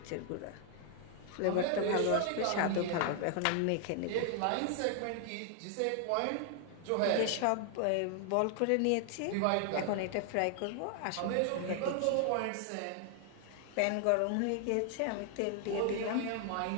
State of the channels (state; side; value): different; both; correlation 0.00